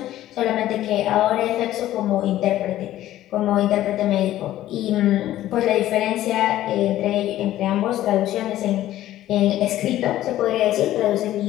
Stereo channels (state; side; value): quieter; right; 13.8 dB